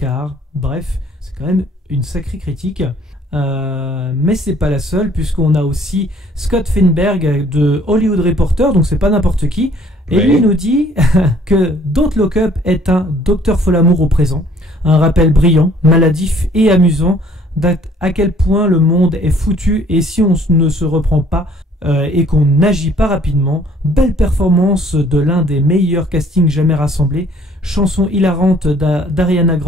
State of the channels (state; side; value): normal; both; correlation 0.58